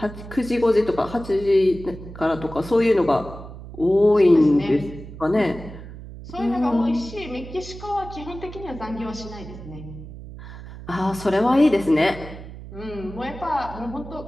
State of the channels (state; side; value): noise; right; hum, 13 dB below the sound